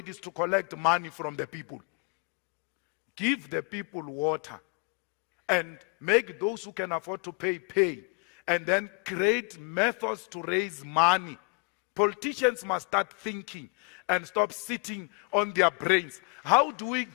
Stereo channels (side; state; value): right; quieter; 33.3 dB